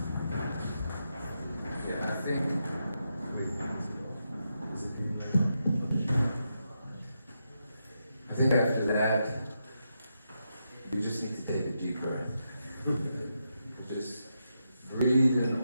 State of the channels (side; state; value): both; inverted; correlation -0.85